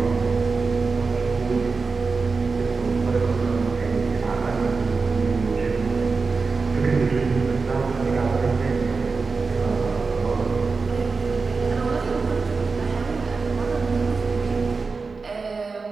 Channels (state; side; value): quieter; left; 4.4 dB